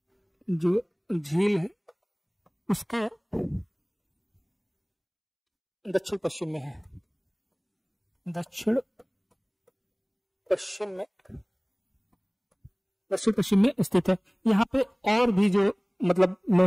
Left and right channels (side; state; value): both; identical; correlation 1.00